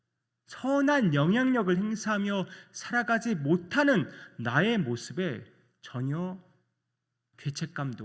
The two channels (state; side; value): identical; both; correlation 1.00